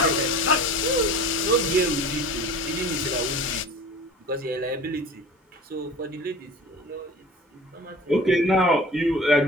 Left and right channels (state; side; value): normal; both; correlation 0.40